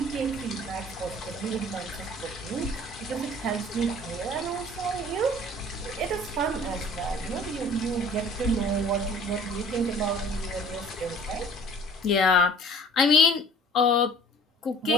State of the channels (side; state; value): both; normal; correlation 0.49